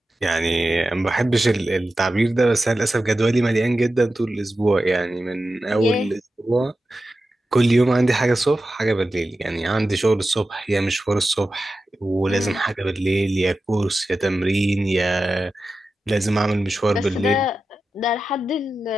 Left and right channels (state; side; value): normal; both; correlation 0.92